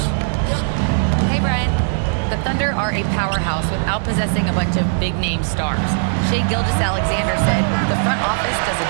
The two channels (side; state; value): left; silent; digital silence